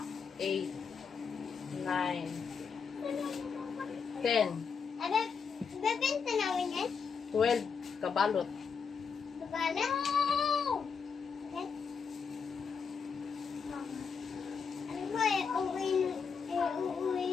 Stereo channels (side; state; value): right; quieter; 5.9 dB